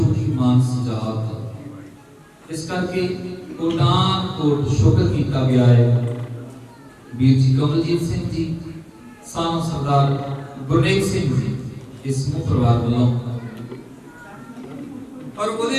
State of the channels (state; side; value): identical; both; correlation 1.00